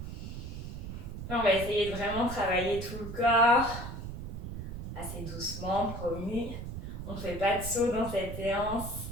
On va essayer de vraiment travailler tout le corps, assez doucement, promis. On ne fait pas de saut dans cette séance.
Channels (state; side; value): noise; right; rumble, 7 dB below the sound